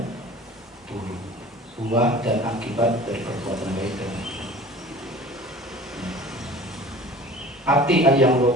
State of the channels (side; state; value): both; normal; correlation 0.42